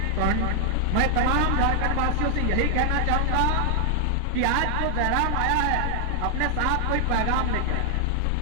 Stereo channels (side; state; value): both; different; correlation 0.00